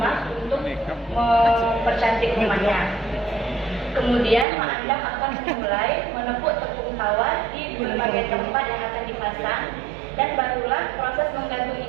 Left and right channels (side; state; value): left; drops out; at 4.5 s